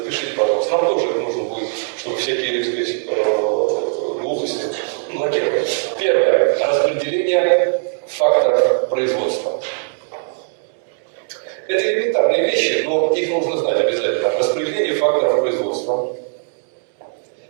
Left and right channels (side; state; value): left; silent; 66 dB below the other